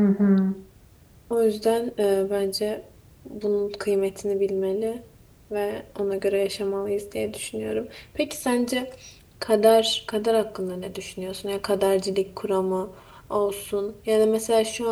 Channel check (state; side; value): identical; both; correlation 1.00